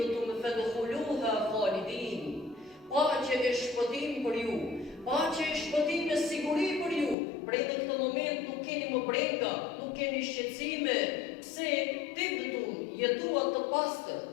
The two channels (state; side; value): drops out; right; at 7.2 s